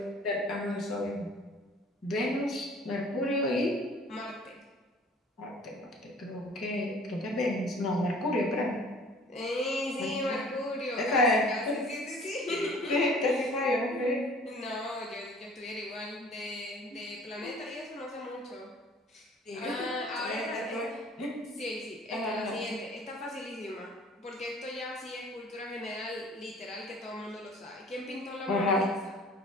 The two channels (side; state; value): both; normal; correlation 0.50